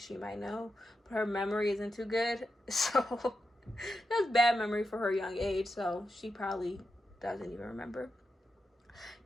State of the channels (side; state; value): both; normal; correlation 0.87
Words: might know, but her memory isn't too good, so that's bad memory for her young age, so she probably doesn't even remember.